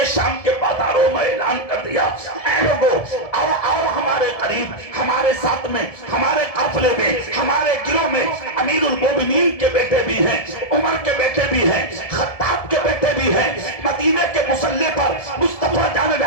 شام کے بازاروں میں اعلان کر دیا, اے لوگو آؤ آؤ ہمارے قریب, ہمارے ساتھ میں, ہمارے قافلے میں, ہمارے گروہ میں امیر المومنین کے بیٹے بھی ہیں, عمر کے بیٹے بھی ہیں, خطاب کے بیٹے بھی ہیں. مدینے کے مسلح پر مصطفیٰ جان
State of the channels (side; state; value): right; late; 1.7 ms